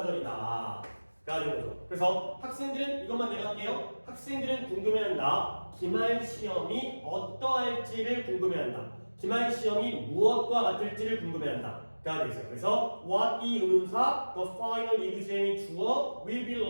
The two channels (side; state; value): both; inverted; correlation -1.00